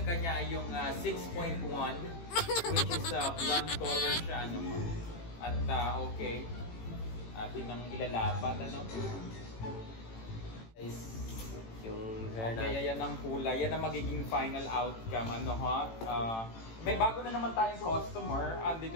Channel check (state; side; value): late; right; 18 ms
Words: kanya ay yung 6.1 which is blonde color siya. Ano? At okay, atin nang ilalapat. Ano? Yung hair okay, yan ang kulay. Yan ang magiging final outcome. Ano ha? May bago na naman tayong customer.